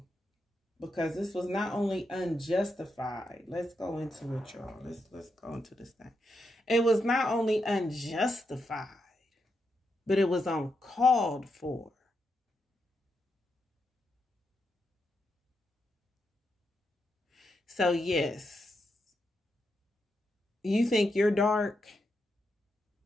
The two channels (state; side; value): normal; both; correlation 0.84